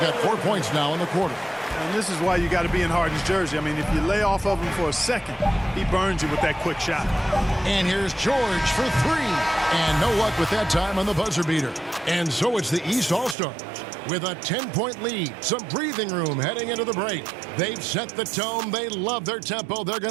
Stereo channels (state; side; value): drops out; left; at 13.4 s